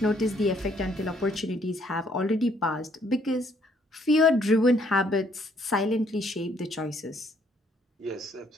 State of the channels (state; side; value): normal; both; correlation 0.67